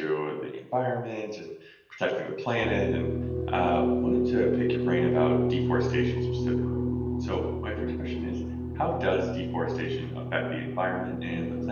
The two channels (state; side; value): identical; both; correlation 1.00